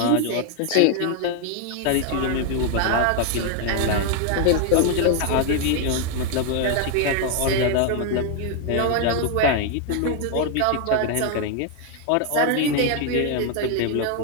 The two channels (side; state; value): both; different; correlation 0.00